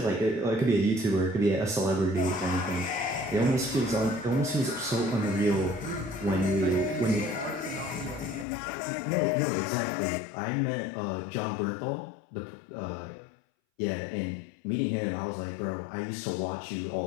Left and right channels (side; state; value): right; drops out; at 8.5 s